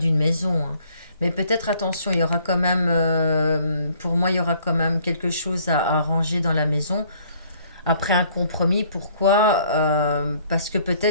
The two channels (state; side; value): inverted; both; correlation -0.61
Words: maison, hein. Mais peut-être attention, il y aura quand même, pour moi, il y aura quand même quelque chose à arranger dans la maison. Après un compromis, pourquoi? Parce que